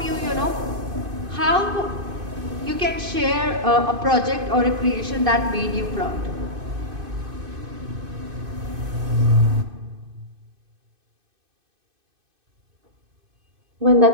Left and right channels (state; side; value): late; left; 2.5 ms